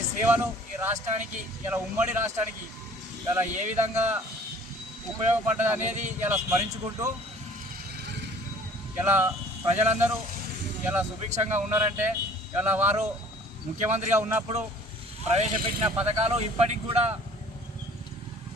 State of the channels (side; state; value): both; normal; correlation 0.51